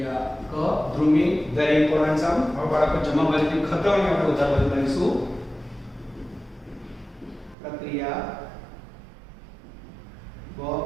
ક ધ્રુવી વેરી ઇમ્પોર્ટન્ટ સમ. હવે બાળકો જમા બાજુની ખતવણી આપણે ઉધાર બાજુ કરીશું. પ્રક્રિયા બ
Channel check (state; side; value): drops out; left; at 7.6 s